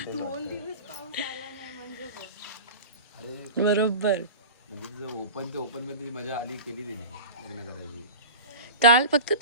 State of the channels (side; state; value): both; inverted; correlation -0.33